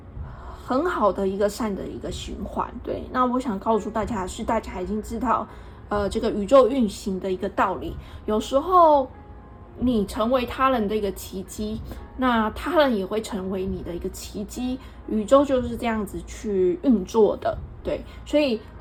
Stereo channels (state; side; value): identical; both; correlation 1.00